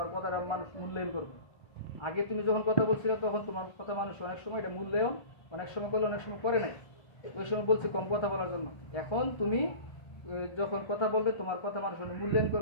কথাটা মানুষ মূল্যায়ন করবে। আগে তুমি যখন কথা বলছিলে তখন তোমার কথা মানুষ অনেক সময় এটা মূল্যায়ন অনেক সময় করলে অনেক সময় করে নাই, ওই সময় বলছে কম কথা বলার জন্য। এখন তুমি যখন কথা বলবে তোমার কথা মানুষ মূল্যায়ন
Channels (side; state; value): right; late; 1.3 ms